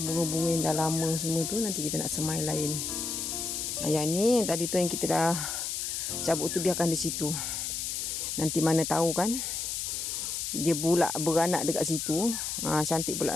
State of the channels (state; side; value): noise; left; hiss, 3 dB below the sound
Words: bunga-bunga yang dah lama semua tu. Nanti kita nak semai lain. Yang ni tadi tu yang kita dah cabut tu biarkan di situ. Nanti mana tahu kan dia pula beranak dekat situ. Cantik